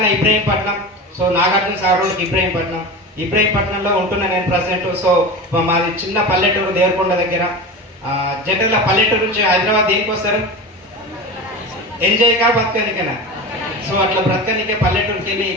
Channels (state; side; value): normal; both; correlation 0.28